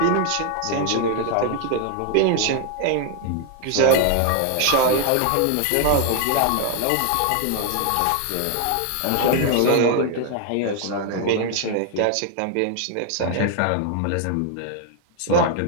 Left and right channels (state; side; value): different; both; correlation 0.00